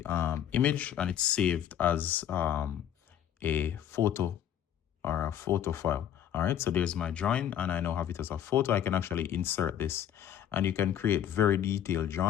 image, and it's saved as a photo or a photo file. All right, so there's my drawing, and I now have it as a photo. I can actually insert this, and you can create very detailed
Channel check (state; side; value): quieter; right; 10.2 dB